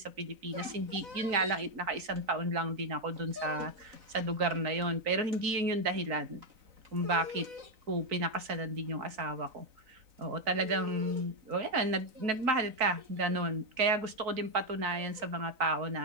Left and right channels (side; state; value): left; late; 3.9 ms